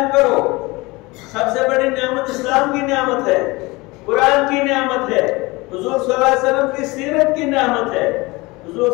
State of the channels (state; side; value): quieter; right; 23.2 dB